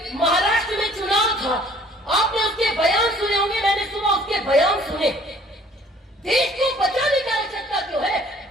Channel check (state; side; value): normal; both; correlation 0.55